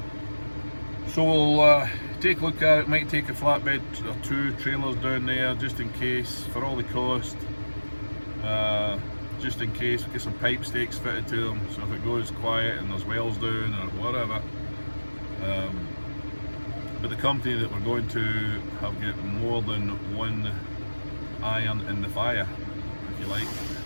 So we'll take a look at it. Might take a flatbed or two trailers down there just in case, for all the cost. Just in case, we'll get some pipe stakes fitted to them, so if it goes quiet and there's wells down or whatever. But the company that we're going to have got more than one iron in the fire, if you like.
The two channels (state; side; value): inverted; both; correlation -1.00